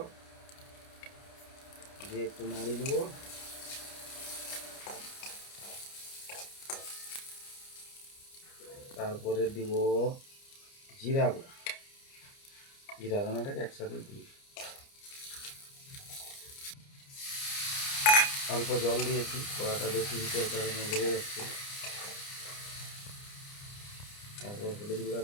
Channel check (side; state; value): right; late; 29 ms